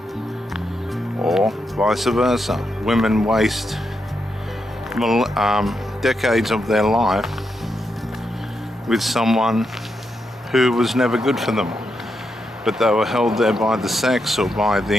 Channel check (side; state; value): both; normal; correlation 0.83